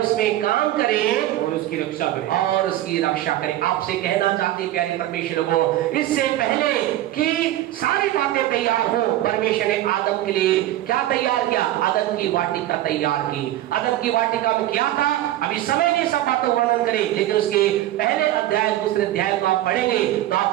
और उसकी रक्षा करे। आपसे कहना चाहते प्यारे परमेश्वर को, इससे पहले कि सारी बातें तैयार हो, परमेश्वर ने आदम के लिए क्या तैयार किया? अदन की वाटिका तैयार की। अदन की वाटिका में क्या था? अभी समय नहीं सब बातों वर्णन करें, लेकिन उसके पहले अध्याय दूसरे अध्याय को आप पढ़ेंगे तो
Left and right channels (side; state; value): left; quieter; 14.2 dB